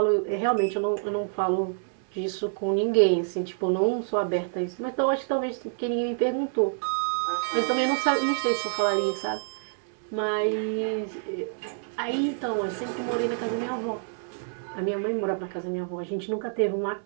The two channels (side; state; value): left; silent; 60 dB below the other